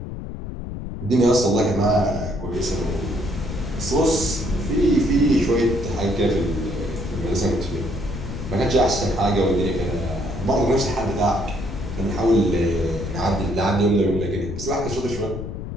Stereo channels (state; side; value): noise; left; rumble, 8 dB below the sound